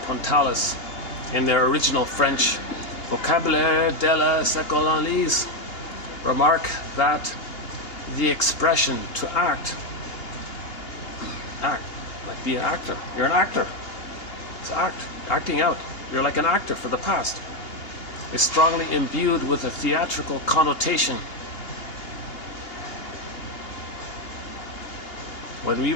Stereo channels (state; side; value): late; right; 2.8 ms